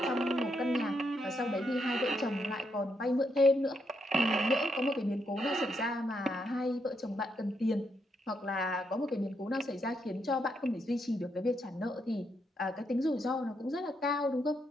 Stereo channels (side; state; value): both; normal; correlation 0.78